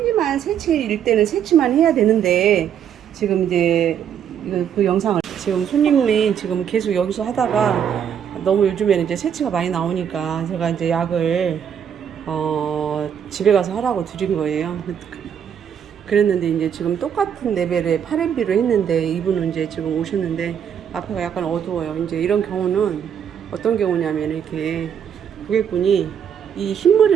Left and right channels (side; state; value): left; quieter; 8.6 dB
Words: 새치일 때는 새치만 해야 되는데 지금 이제 그 영상을 지금 손님이 지금 계속 여기서 하다가 너무 요즘에는 이제 새치가 많이 나오니까 제가 이제 약을 집에 가서 하라고 드린 거예요. 그랬는데 이제 지금 똑같은 레벨의 파렌비로 했는데 이분은 이제 지금 오셨는데 앞에가 약간 어두워요. 이제 이런 경우는 어떤 경우냐면 이렇게 고객분이 이